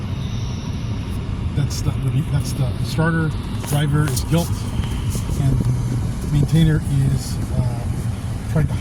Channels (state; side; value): identical; both; correlation 1.00